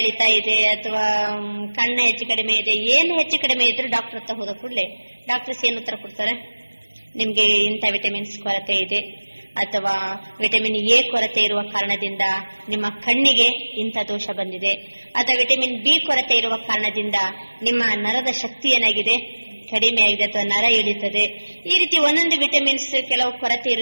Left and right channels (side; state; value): both; inverted; correlation -1.00